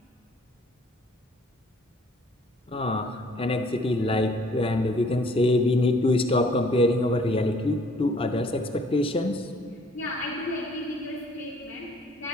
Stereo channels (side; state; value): both; normal; correlation 0.58